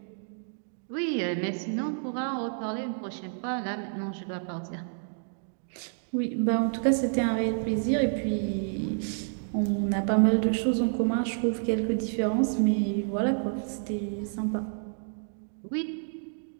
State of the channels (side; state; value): left; silent; digital silence